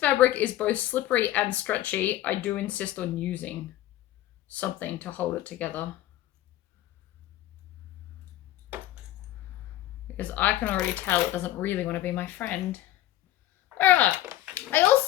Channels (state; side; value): quieter; right; 14.3 dB